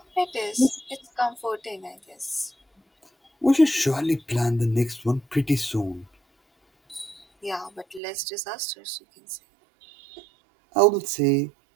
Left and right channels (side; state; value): left; drops out; at 8.0 s